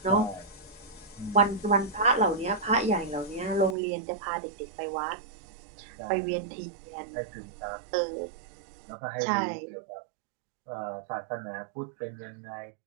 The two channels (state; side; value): drops out; left; at 3.8 s